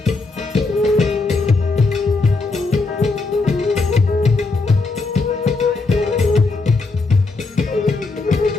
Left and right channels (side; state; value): right; quieter; 3.7 dB